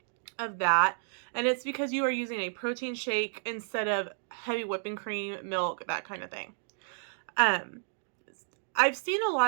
of that. And it's because you are using a protein shake instead of heavy whipping cream, milk, that kind of thing. I've seen a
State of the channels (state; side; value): silent; left; digital silence